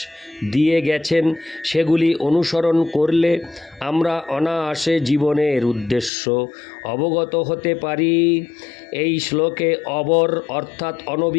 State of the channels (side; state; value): right; drops out; at 6.1 s